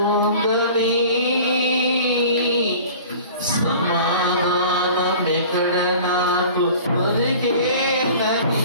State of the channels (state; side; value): inverted; both; correlation -0.43